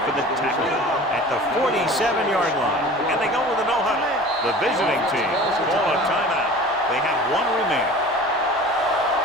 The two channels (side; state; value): both; normal; correlation 0.40